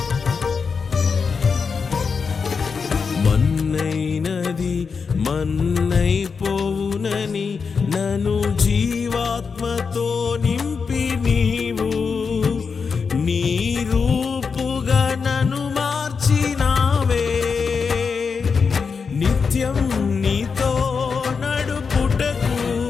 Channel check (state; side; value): quieter; right; 5.4 dB